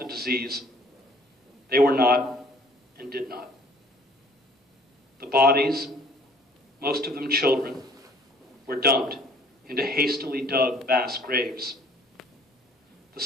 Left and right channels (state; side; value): normal; both; correlation 0.56